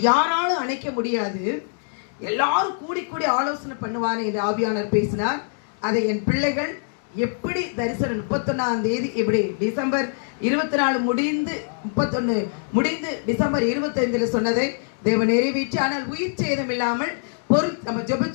யாராலும் அணைக்க முடியாது. எல்லாரும் கூடி கூடி ஆலோசனை பண்ணுவானே என்று ஆவியானவர் பேசினார். அதை என் பிள்ளைகள் எப்படி தரிசனம் 31ஆம் தேதி இப்படி டிசம்பர் 24 முடிந்து 31 முடிந்து டிசம்பர் 25 சொன்னதை தேவன் நிறைவேற்றி, ஆனால் உயிர் சேதம் இல்லாமல் நம்ம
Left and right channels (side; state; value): right; silent; digital silence